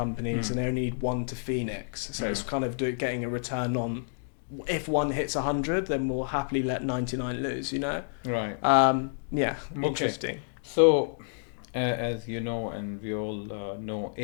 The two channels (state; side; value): silent; right; digital silence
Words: and they only need one to Phoenix. So it's kind of getting a return on, if one hits 100, then we'll happily let 99 lose, Right. Interesting. So, as you know, and we all know,